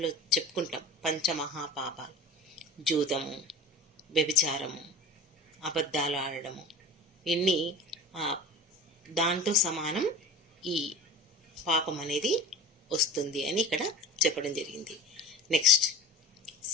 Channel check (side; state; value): both; normal; correlation 0.37